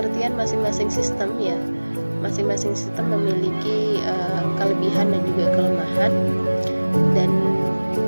masing-masing sistem ya. Masing-masing sistem memiliki kelebihan dan juga kelemahan dan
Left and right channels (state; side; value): inverted; both; correlation -1.00